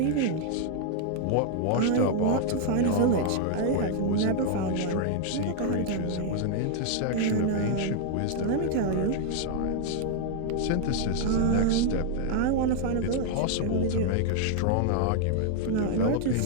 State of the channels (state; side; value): different; both; correlation 0.00